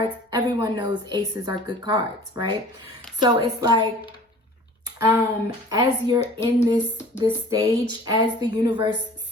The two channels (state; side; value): normal; both; correlation 0.46